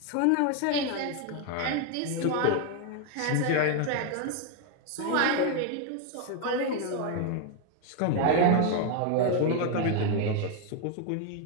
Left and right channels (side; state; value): both; different; correlation 0.01